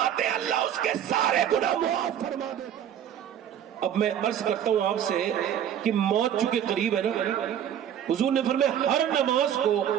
हैं अल्लाह उसके सारे गुनाह माफ़ फरमा देता है। अब मैं अर्ज करता हूं आपसे कि मौत चूंकि करीब है ना, हुजूर ने फरमाया हर नमाज को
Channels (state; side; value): quieter; left; 9.8 dB